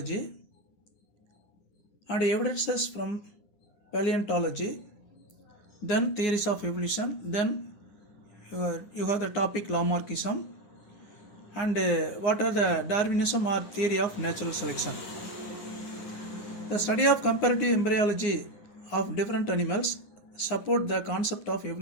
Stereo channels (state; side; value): late; right; 9.9 ms